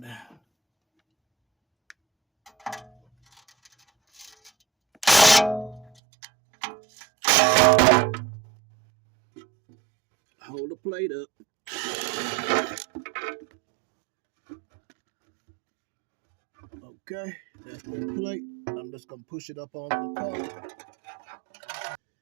down. Hold the plate up. Okay, that's the plate. I'm just gonna push it up onto the car.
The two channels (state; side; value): drops out; left; at 5.9 s